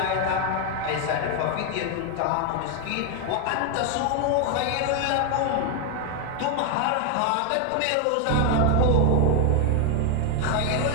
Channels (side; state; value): both; different; correlation 0.01